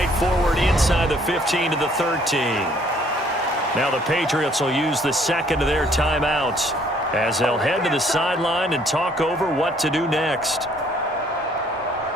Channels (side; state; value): both; normal; correlation 0.62